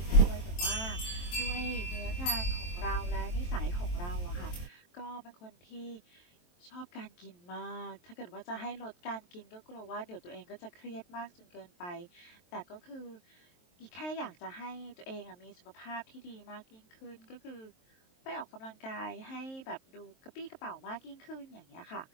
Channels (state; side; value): late; right; 23 ms